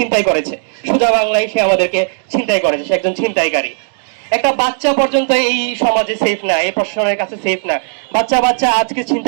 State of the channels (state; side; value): silent; left; digital silence